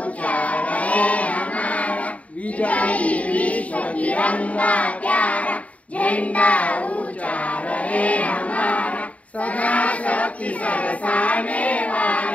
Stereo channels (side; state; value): right; late; 0.068 ms